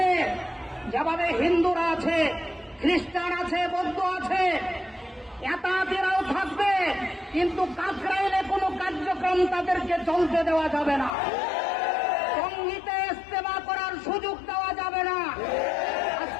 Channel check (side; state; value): right; drops out; at 11.1 s